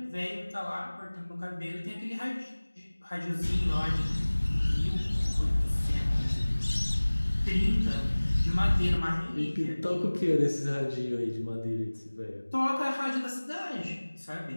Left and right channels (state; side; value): inverted; both; correlation -1.00